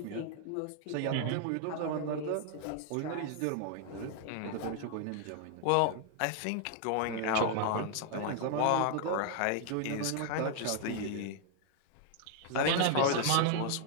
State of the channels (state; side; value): different; both; correlation -0.01